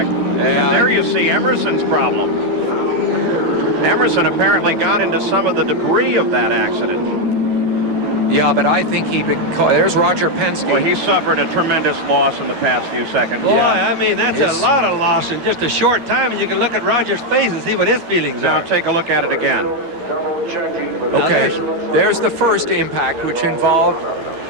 And there you see Emerson's problem. Emerson apparently got into some of the debris of that accident. Yeah, but I think there's Roger Penske. Well, he suffered a tremendous loss in the past few seconds. Boy, I mean, that's a lot of loss in just a short time, and you can look at Roger's face and see what his feelings are. Now take a look at it again. Okay, there's the first impact, which involved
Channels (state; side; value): late; left; 13 ms